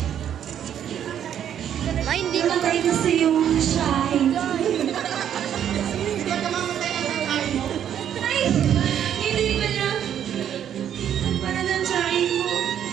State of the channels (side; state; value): left; quieter; 9.7 dB